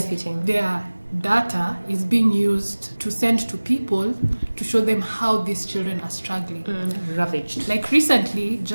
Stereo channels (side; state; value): both; inverted; correlation -1.00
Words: Their data is being used to send to people to show them how these children are struggling. Ravaged. Like recently,